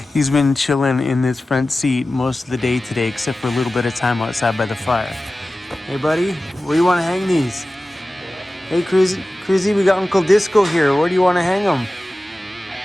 He's been chilling in this front seat most of the day today, except for a little bit of time outside by the fire. Hey, buddy, where do you want to hang these? Hey, Cruzy, we got Uncle Disco here. Where do you want to hang them?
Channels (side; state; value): both; normal; correlation 0.96